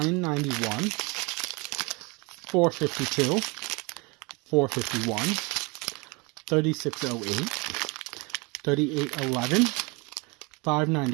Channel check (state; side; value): quieter; left; 28.2 dB